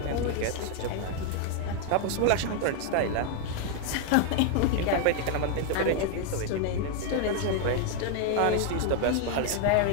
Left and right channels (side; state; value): both; different; correlation 0.00